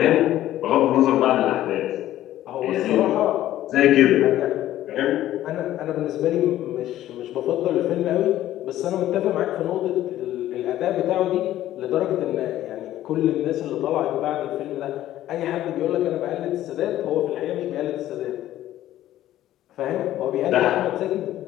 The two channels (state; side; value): quieter; right; 13.5 dB